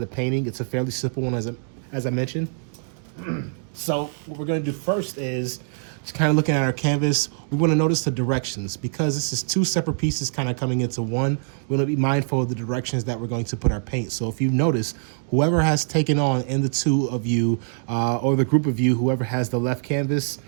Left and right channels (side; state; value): left; silent; digital silence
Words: painting. It's a fairly simple one, as I mentioned. So what we're going to do first is just kind of looking at our canvas. We want to notice the directions because this is 2 separate pieces kind of coming into one. We want to be mindful of the directions that we're going to put our paint. So if you notice, whoever has taken on in the 2 of you or the group of you, whoever has the left canvas,